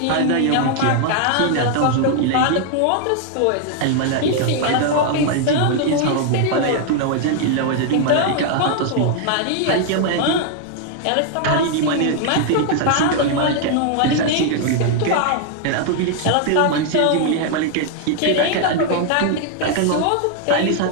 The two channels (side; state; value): both; different; correlation 0.00